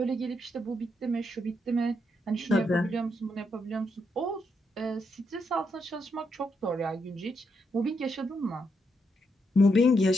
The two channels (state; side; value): normal; both; correlation 0.80